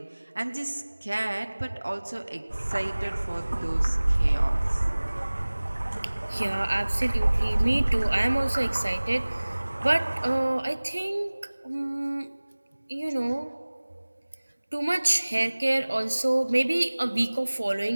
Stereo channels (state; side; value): inverted; both; correlation -1.00